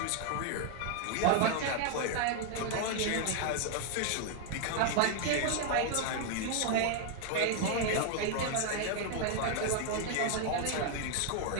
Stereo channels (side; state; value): both; different; correlation 0.00